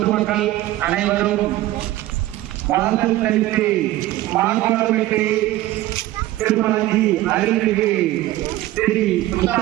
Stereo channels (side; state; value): left; quieter; 15.9 dB